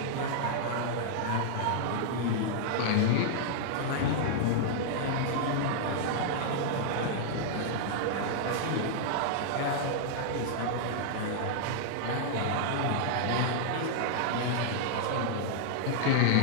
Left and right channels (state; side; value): different; both; correlation -0.01